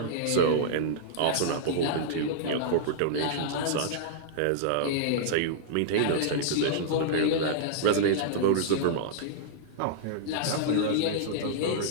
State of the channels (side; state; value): both; different; correlation -0.02